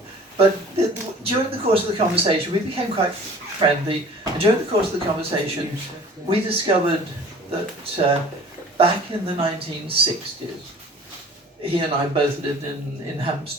But during the course of the conversation, we became quite friendly. And during the course of the conversation, we discovered that back in the 1960s, he and I both lived in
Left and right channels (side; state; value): both; normal; correlation 0.47